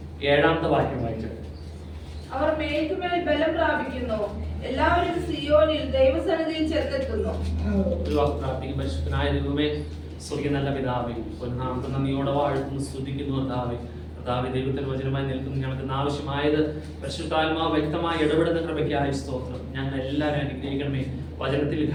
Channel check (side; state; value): both; identical; correlation 1.00